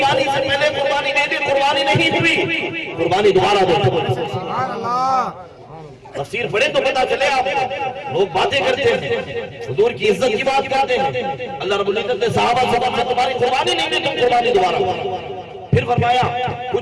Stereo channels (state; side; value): identical; both; correlation 1.00